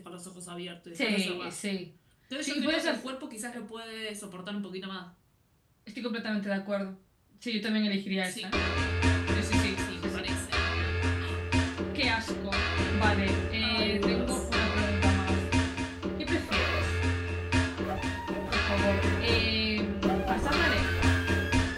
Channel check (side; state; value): both; identical; correlation 1.00